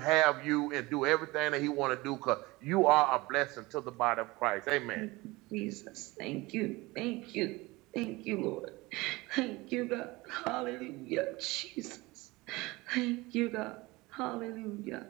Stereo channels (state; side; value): quieter; left; 21.9 dB